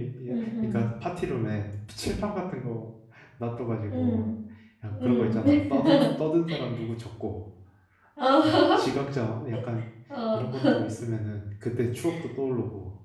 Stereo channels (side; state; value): both; identical; correlation 1.00